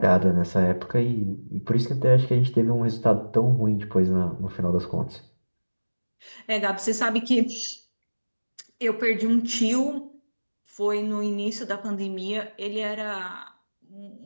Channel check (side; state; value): both; inverted; correlation -1.00